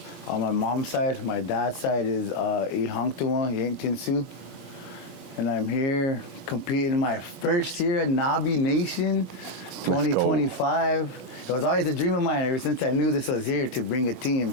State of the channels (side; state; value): right; late; 20 ms